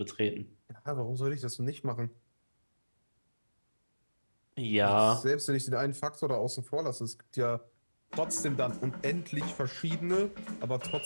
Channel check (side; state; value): both; inverted; correlation -1.00